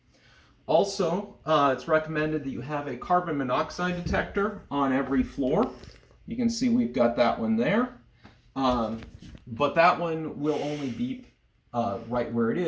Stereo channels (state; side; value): identical; both; correlation 1.00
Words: Also, it's recommended that you have a carbon monoxide detector on every floor. You can see we've got that one there. But that one will only beep right where it